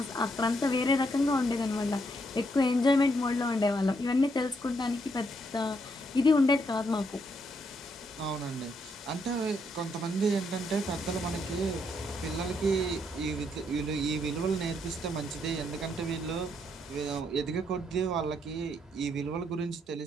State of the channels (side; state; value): both; normal; correlation 0.75